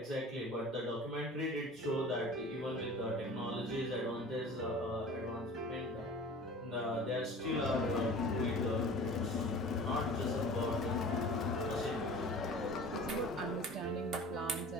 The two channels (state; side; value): normal; both; correlation 0.41